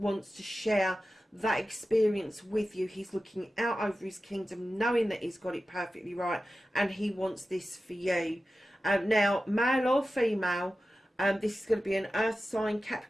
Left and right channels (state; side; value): normal; both; correlation 0.94